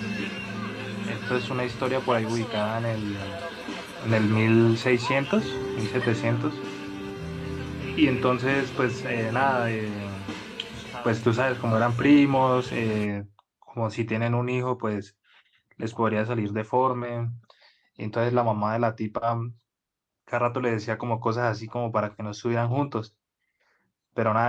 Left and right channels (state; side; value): identical; both; correlation 1.00